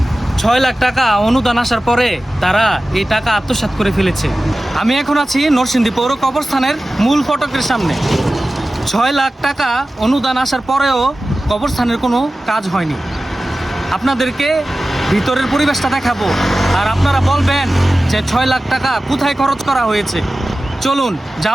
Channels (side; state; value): both; normal; correlation 0.96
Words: 6 লাখ টাকা অনুদান আসার পরে তারা এই টাকা আত্মসাৎ করে ফেলেছে। আমি এখন আছি নরসিংদী পৌর কবরস্থানের মূল ফটকের সামনে। 6 লাখ টাকা অনুদান আসার পরেও কবরস্থানের কোনো কাজ হয়নি। আপনাদেরকে ভিতরের পরিবেশটা দেখাবো, আর আপনারা বলবেন যে 6 লাখ টাকা কোথায় খরচ করা হয়েছে। চলুন